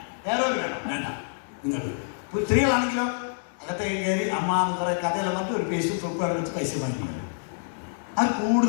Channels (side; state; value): right; silent; digital silence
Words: ഹെയർ ഓയിൽ വേണോ? വേണ്ട. നിങ്ങൾക്ക് സ്ത്രീകളാണെങ്കിലോ അകത്തേക്ക് കയറി അമ്മ എന്ന് കുറേ കഥയെല്ലാം പറഞ്ഞിട്ട് ഒരു പേസ്റ്റ് സോപ്പ് വേണം വെച്ച് പൈസ വാങ്ങിക്കുന്നത്. അത്